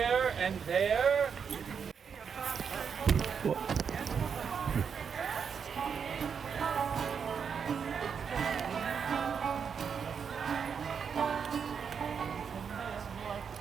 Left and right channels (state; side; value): quieter; left; 6.7 dB